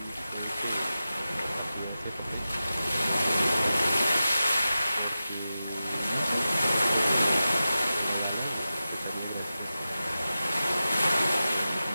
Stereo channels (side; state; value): both; inverted; correlation -0.92